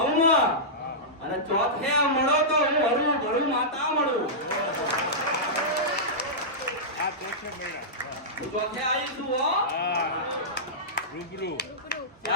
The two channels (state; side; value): normal; both; correlation -0.14